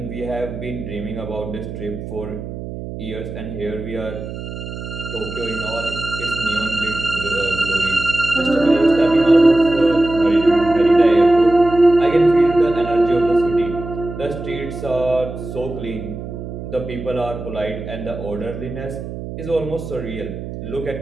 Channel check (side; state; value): right; noise; hum, 9 dB below the sound